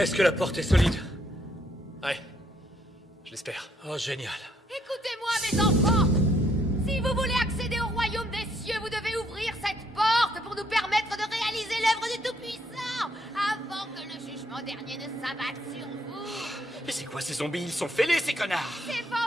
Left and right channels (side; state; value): both; normal; correlation 0.71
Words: que la porte est solide? Ouais. Je l'espère. Oh, génial. Écoutez-moi, mes enfants. Si vous voulez accéder au royaume des cieux, vous devez ouvrir cette porte pour nous permettre de réaliser l'œuvre du Tout-Puissant avant que le jugement dernier ne s'abatte sur vous. Mais c'est quoi ces zombies? Ils sont fêlés, ces connards! C'est